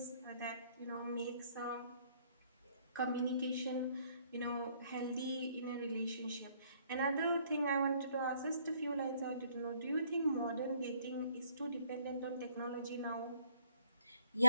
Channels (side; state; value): both; inverted; correlation -0.65